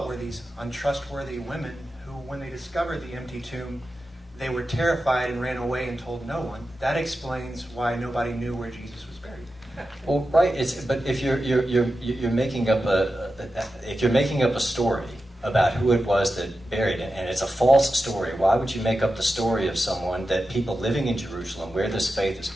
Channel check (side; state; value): both; normal; correlation 0.91